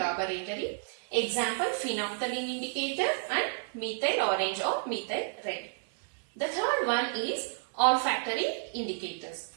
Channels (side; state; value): left; silent; digital silence